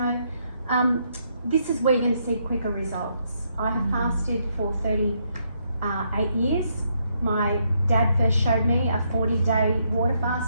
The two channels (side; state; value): both; inverted; correlation -0.75